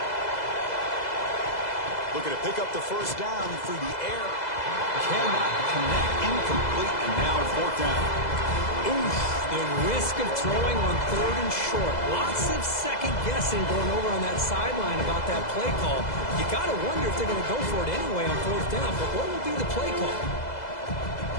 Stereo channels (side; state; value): right; late; 2.0 ms